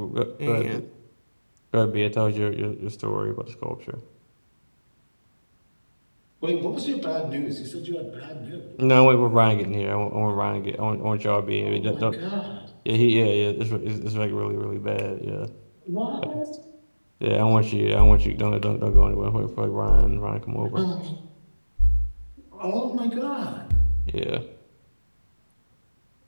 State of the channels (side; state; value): both; inverted; correlation -1.00